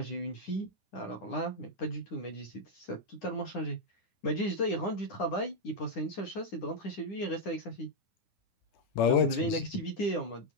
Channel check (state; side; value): late; right; 9.8 ms